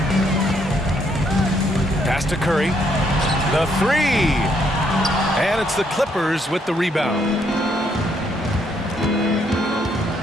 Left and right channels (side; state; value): both; normal; correlation 0.72